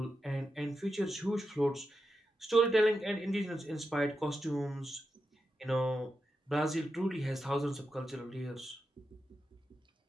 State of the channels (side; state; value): both; normal; correlation 0.88